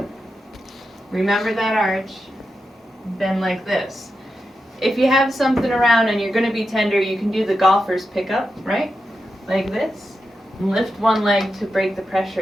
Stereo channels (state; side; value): normal; both; correlation 0.89